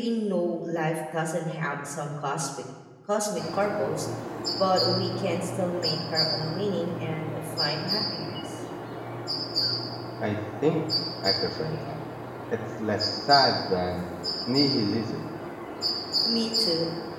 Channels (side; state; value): both; identical; correlation 1.00